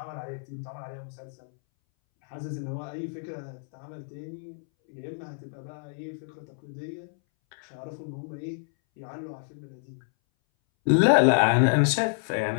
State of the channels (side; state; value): right; silent; 59 dB below the other